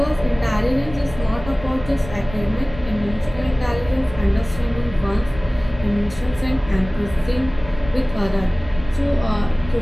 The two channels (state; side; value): noise; left; rumble, 14 dB below the sound